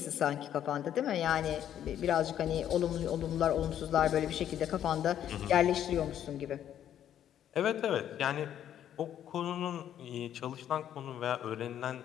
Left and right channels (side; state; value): right; quieter; 10.5 dB